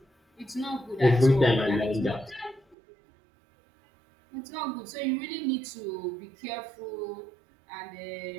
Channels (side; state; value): left; drops out; at 2.8 s